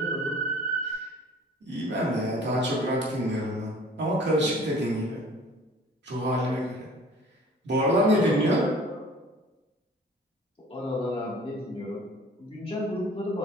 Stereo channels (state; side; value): normal; both; correlation 0.49